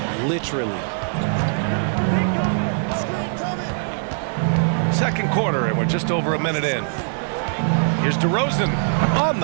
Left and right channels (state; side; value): silent; left; digital silence